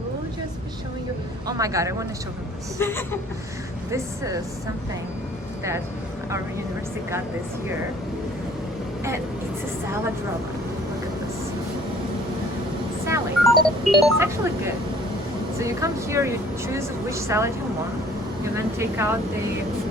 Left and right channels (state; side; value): normal; both; correlation 0.54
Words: just be showing you. Oh my god, I want to show them this. This is something that our university got this year, and it's a salad roller. Look at this salad. It's actually good. So you come here, you choose which salad you want. You then take out the